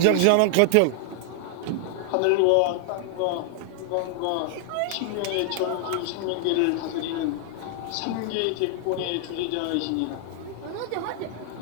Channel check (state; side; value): different; both; correlation 0.00